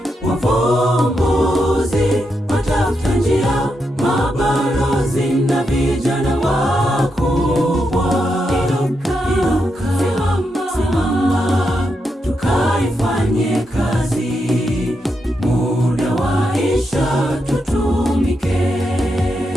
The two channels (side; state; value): both; normal; correlation 0.84